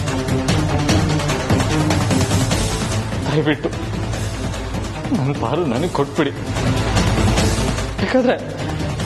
ದಯವಿಟ್ಟು ನನ್ನ ಪಾರು ನನಗೆ ಕೊಟ್ಬಿಡಿ. ಯಾಕಂದ್ರೆ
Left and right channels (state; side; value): identical; both; correlation 1.00